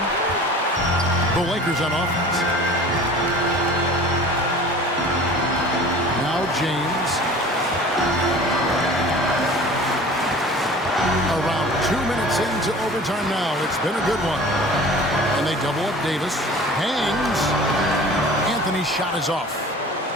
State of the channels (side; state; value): both; normal; correlation 0.42